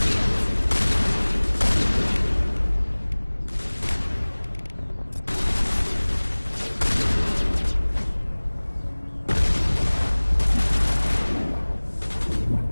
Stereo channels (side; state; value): both; inverted; correlation -1.00